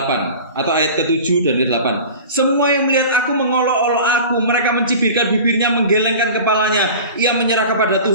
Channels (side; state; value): both; inverted; correlation -0.38